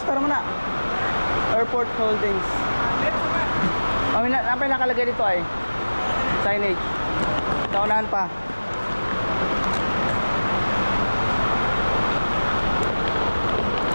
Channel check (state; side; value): inverted; both; correlation -1.00